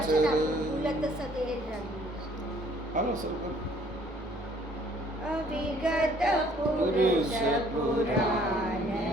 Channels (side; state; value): both; normal; correlation 0.59